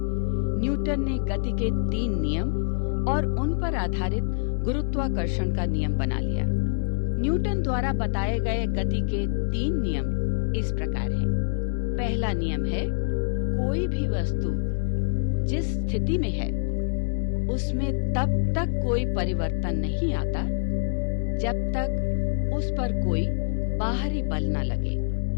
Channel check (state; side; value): silent; right; digital silence